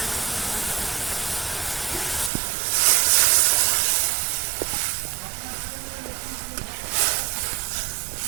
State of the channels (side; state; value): left; drops out; at 2.3 s